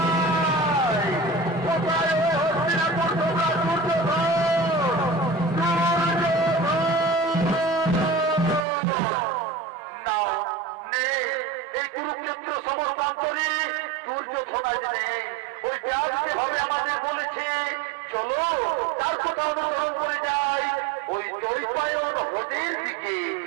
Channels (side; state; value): left; drops out; at 8.7 s